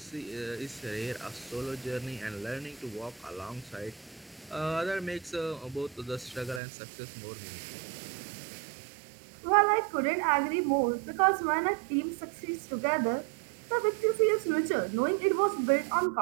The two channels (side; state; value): left; drops out; at 6.6 s